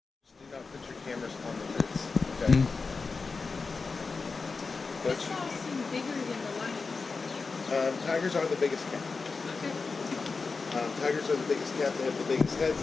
Tigers are the biggest cat. Tigers are the biggest cat. They have the biggest heads,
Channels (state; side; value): quieter; right; 4.4 dB